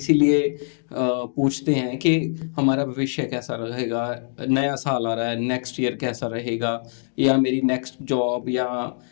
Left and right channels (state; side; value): silent; right; digital silence